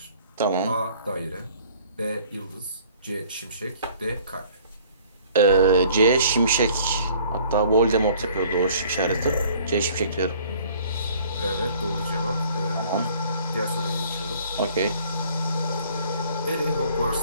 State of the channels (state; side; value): inverted; both; correlation -0.54